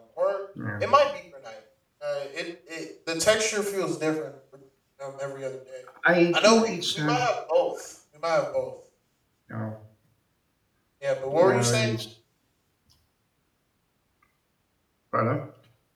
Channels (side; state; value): both; identical; correlation 1.00